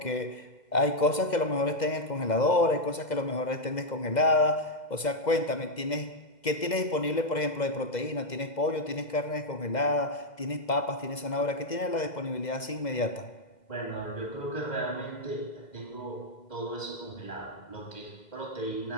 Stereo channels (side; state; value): right; late; 2.0 ms